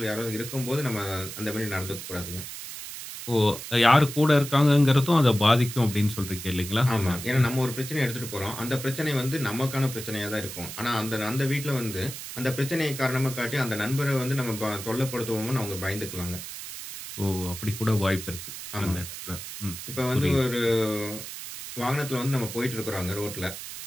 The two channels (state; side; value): noise; right; hiss, 10 dB below the sound